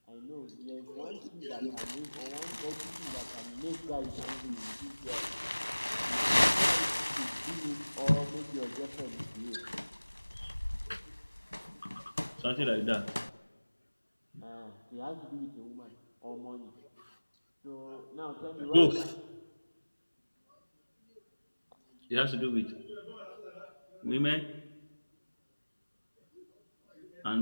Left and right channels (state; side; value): inverted; both; correlation -1.00